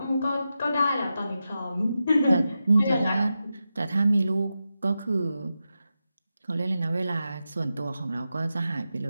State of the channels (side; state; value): both; inverted; correlation -0.90